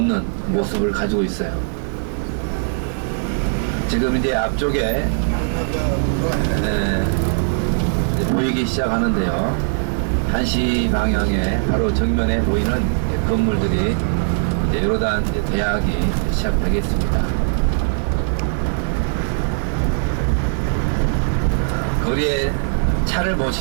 모습을 가지고 있어요. 지금 이제 앞쪽에 보이기 시작하는데요. 1시 방향에 바로 정면에 보이는 건물들이 이제 요르단 대학이 시작되겠습니다. 거리에 차를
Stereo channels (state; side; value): silent; left; 57 dB below the other